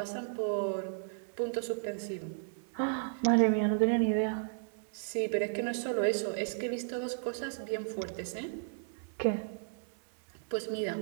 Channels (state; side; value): silent; left; digital silence